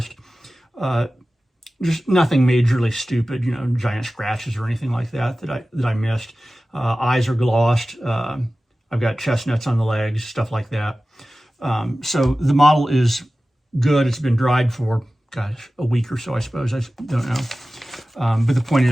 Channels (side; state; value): both; normal; correlation 0.96